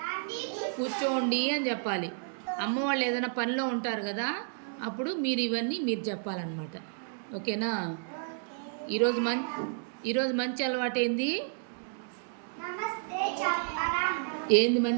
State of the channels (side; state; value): left; silent; digital silence